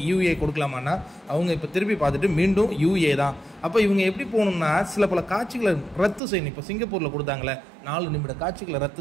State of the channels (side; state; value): left; drops out; at 6.2 s